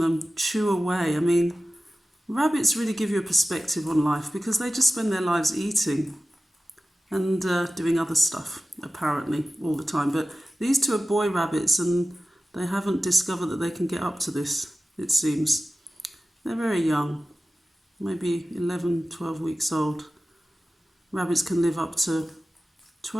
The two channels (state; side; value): normal; both; correlation 0.95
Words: chew away. I mean, rabbits really give you a perspective on life because they just spend their lives eating and doing other stuff, apparently, all the time. But these two are boy rabbits and they haven't discovered that they can get up to this, it seems. They're very young, maybe 11, 12 weeks old. Rabbits can live up to